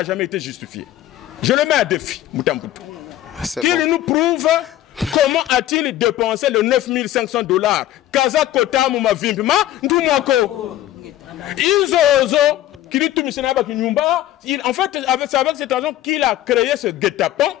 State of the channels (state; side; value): quieter; right; 13.5 dB